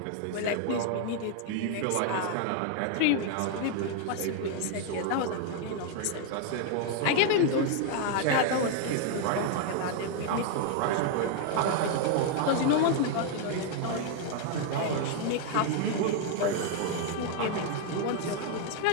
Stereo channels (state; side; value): different; both; correlation 0.00